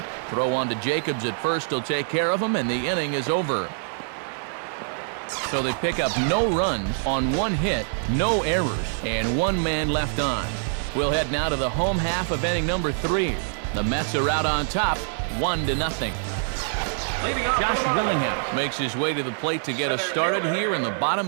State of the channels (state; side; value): silent; left; digital silence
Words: Throw on to Jacobs at first. He'll take care of him, and the inning is over. So they pick up no runs on 1 hit, no errors, and 1 man left on. We'll head now to the home half of inning number 3. The Mets are out on top, 1-0. Josh Willingham makes his way to the plate to get us started here in the